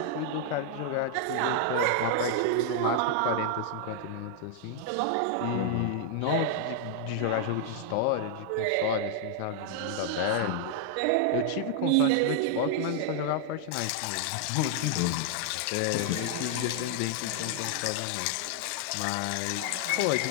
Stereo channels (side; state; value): both; different; correlation 0.00